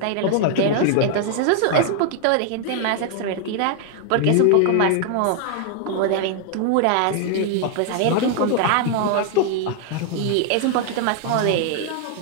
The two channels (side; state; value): both; different; correlation 0.00